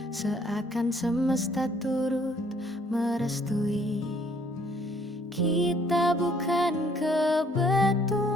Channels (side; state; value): both; normal; correlation 0.63